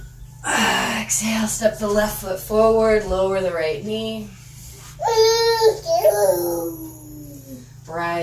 Exhale, step the left foot forward, lower the right knee.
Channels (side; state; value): both; identical; correlation 1.00